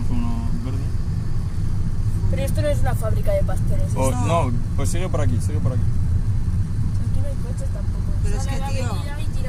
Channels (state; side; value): identical; both; correlation 1.00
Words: uno verde. Pero esto no es una fábrica de pasteles. Oh, no, pues sigue por aquí, sigue por aquí. Aquí no hay coches tampoco. Pero es Sale que, a la tío. avenida y